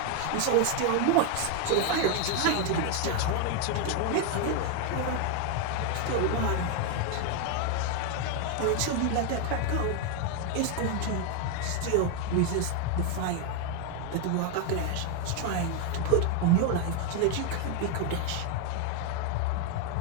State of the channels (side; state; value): both; different; correlation 0.01